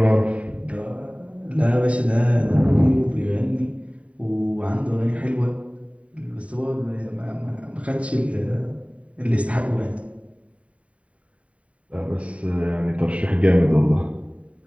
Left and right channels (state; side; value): late; left; 0.065 ms